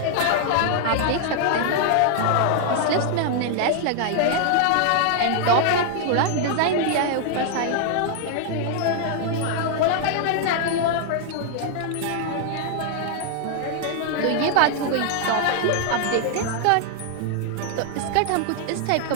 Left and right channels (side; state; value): both; different; correlation 0.00